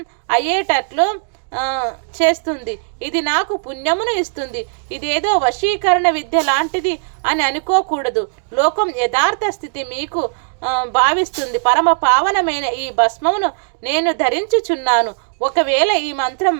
అయ్యేటట్లు చేస్తుంది. ఇది నాకు పుణ్యమును ఇస్తుంది. ఇదేదో వశీకరణ విద్య లాంటిది అని అనుకోకూడదు. లోకం యథార్థ స్థితి మీకు భావిస్తుంది. పరమ పావనమైన ఈ భస్మమును నేను ధరించుచున్నాను. ఒకవేళ ఈ మంత్రం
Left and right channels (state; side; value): silent; left; 67 dB below the other